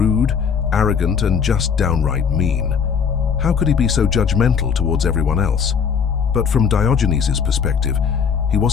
arrogant, and just downright mean. How could he be so judgmental towards everyone else? But from Diogenes' perspective, he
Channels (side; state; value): right; quieter; 6.7 dB